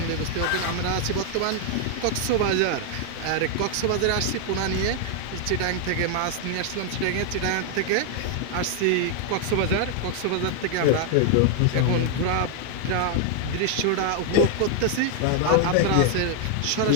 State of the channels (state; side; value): different; both; correlation 0.00